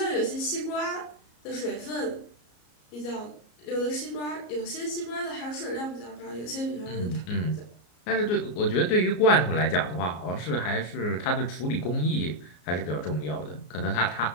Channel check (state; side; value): late; right; 33 ms